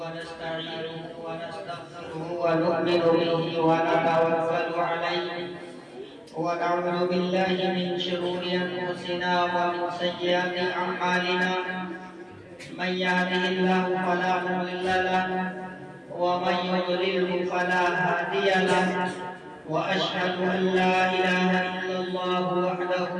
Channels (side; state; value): both; identical; correlation 1.00